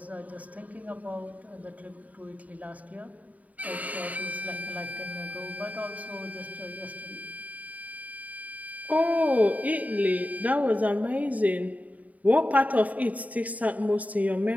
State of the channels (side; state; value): left; late; 0.072 ms